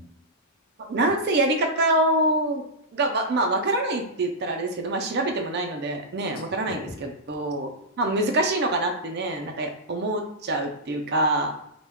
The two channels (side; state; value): both; normal; correlation -0.11